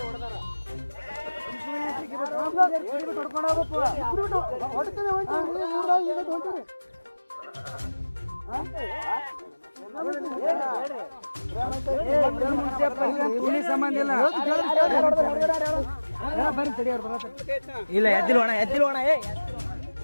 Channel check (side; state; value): both; inverted; correlation -1.00